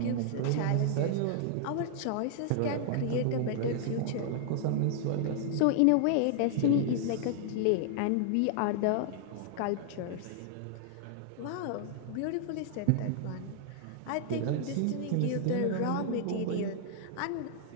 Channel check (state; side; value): different; both; correlation -0.01